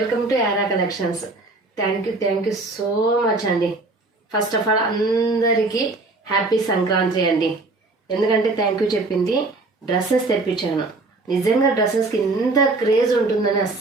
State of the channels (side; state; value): left; quieter; 3.3 dB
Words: to Yaara collections. Thank you so much అండి. ఫస్ట్ ఆఫ్ ఆల్ అందరికీ హ్యాపీ సంక్రాంతి అండి. ఎందుకంటే థ్యాంక్ యూ చెప్పింది డ్రెస్సెస్ తెప్పించాను. నిజంగా డ్రెస్సెస్కి ఇంత క్రేజ్ ఉంటుందని